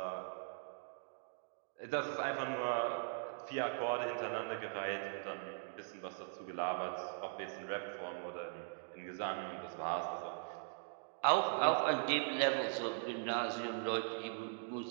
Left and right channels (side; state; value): left; silent; digital silence